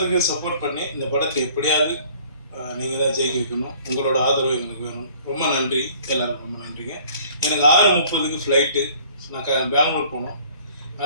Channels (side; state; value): both; inverted; correlation -0.54